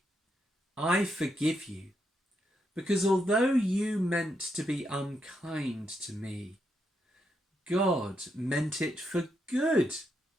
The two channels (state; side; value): normal; both; correlation 0.81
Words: I forgive you, because although you meant to be unkind to me, God meant it for good,